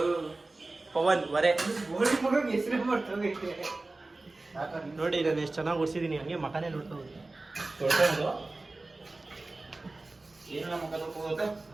ಪವನ್ ವರೆ ಹೆಸರು ಮಾಡ್ತೋಗೈತೆ. ನೋಡಿ ನಾನು ಎಷ್ಟು ಚೆನ್ನಾಗಿ ಓಡಿಸಿದೀನಿ, ಹಂಗೆ ಮಕನೇ ನೋಡ್ತಾ ಹೋಗಿ. ಏನಿಲ್ಲ ಮಕ್ಕ ತೊಳ್ಕೋತ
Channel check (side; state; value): left; quieter; 3.1 dB